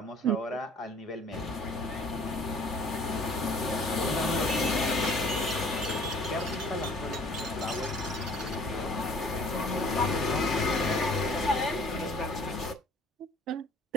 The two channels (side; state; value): both; normal; correlation 0.53